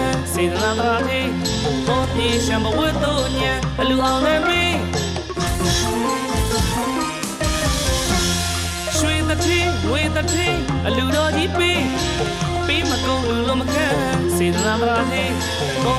စေတနာတရားသေးပေါ်ပြေရှံဘဝတ်တို့ညံအလူအောင်လည်းပေးရွှေတထင်းငွေတထင်းအလူတော်ကြီးပေးမကုန်လူလုံးမခံစေတနာတရားသေးပေါ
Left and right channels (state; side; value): identical; both; correlation 1.00